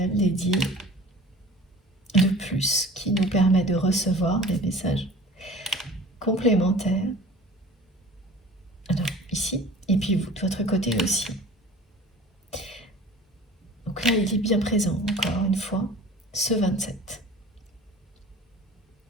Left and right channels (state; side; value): normal; both; correlation 0.44